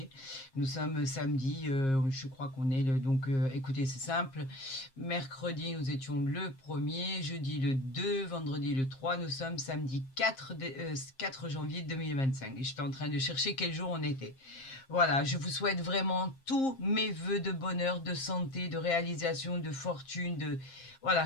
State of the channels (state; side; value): late; right; 7.5 ms